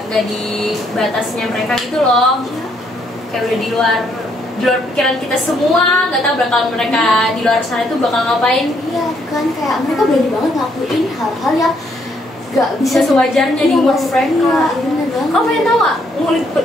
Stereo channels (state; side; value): normal; both; correlation 0.71